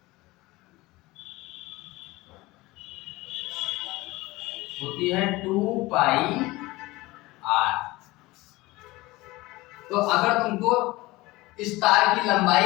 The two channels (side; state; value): right; quieter; 20.4 dB